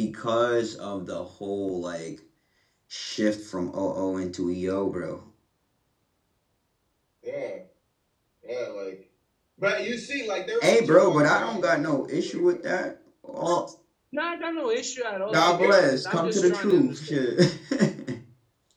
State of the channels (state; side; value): identical; both; correlation 1.00